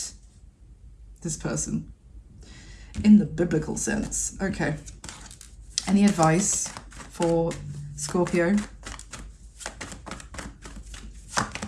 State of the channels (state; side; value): identical; both; correlation 1.00